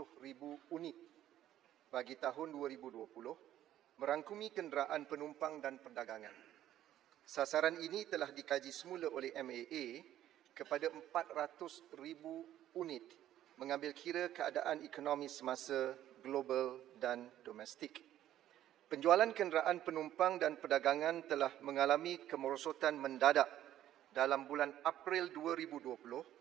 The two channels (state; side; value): quieter; left; 12.4 dB